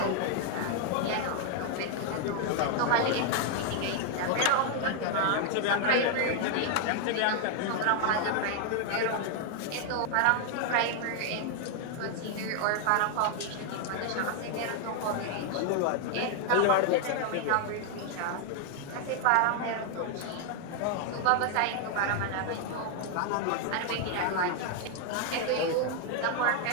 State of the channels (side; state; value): both; different; correlation 0.00